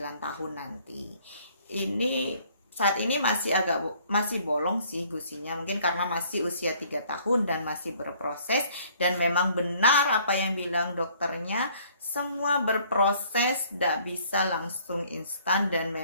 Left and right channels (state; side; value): inverted; both; correlation -0.59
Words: tahun nanti. Ini saat ini masih bolong sih gusinya, mungkin karena masih usia 3 tahun dan masih berproses. Dan memang benar apa yang bilang dokternya, semua berproses, tidak bisa langsung instan. Dan